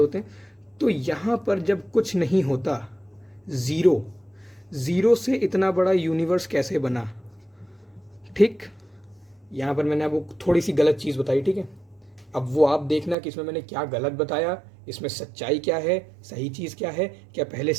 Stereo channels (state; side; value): drops out; left; at 13.2 s